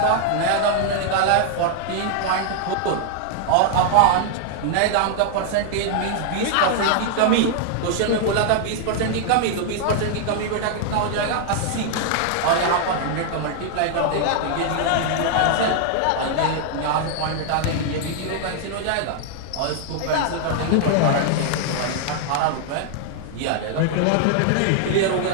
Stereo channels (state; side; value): different; both; correlation 0.00